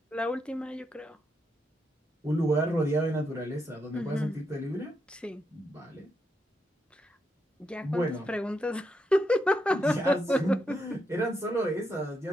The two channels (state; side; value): normal; both; correlation 0.82